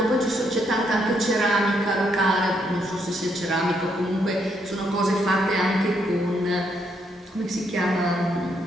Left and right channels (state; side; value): normal; both; correlation 0.75